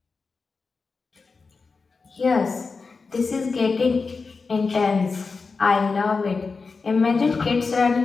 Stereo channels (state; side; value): quieter; right; 4.5 dB